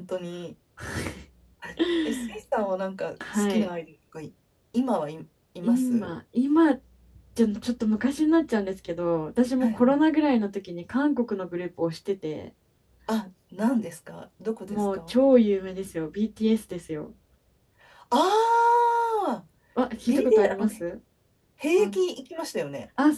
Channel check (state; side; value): identical; both; correlation 1.00